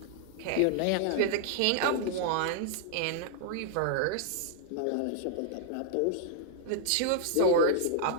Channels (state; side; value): different; both; correlation 0.00